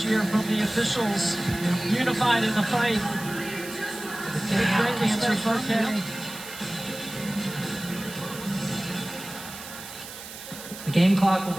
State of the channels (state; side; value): noise; right; hiss, 13 dB below the sound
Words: year from the officials, unified in the fight. The game clock will